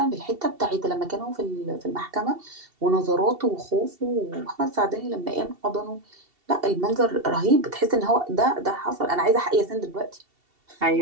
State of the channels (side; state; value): left; late; 2.7 ms